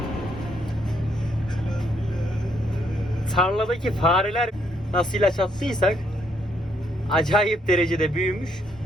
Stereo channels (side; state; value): both; normal; correlation 0.72